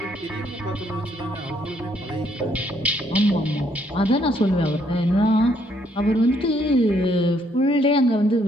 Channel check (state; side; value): normal; both; correlation 0.70